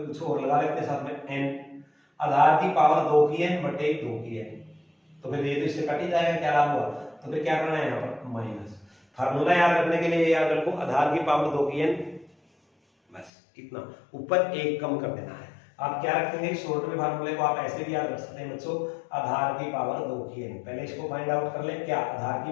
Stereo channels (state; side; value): drops out; right; at 13.3 s